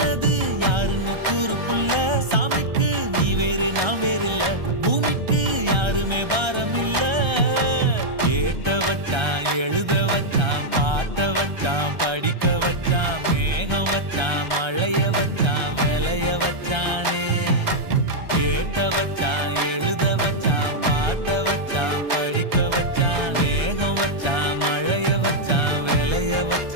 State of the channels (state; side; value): late; left; 1.3 ms